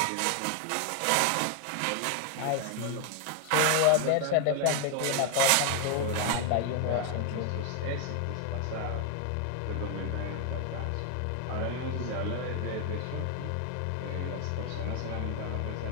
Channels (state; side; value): different; both; correlation 0.01